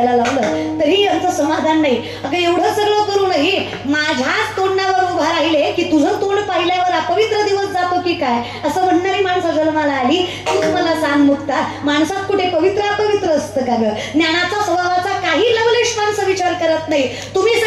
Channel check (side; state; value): both; identical; correlation 1.00